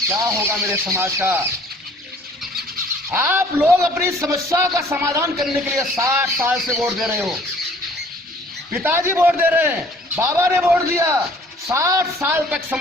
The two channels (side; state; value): both; normal; correlation 0.55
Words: क्या होगा मेरे समाज का? आप लोग अपनी समस्या का समाधान करने के लिए 60 साल से वोट दे रहे हो। पिताजी वोट दे रहे हैं, बाबा ने वोट दिया, 60 साल तक